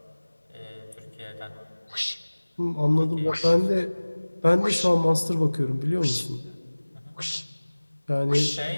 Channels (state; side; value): inverted; both; correlation -1.00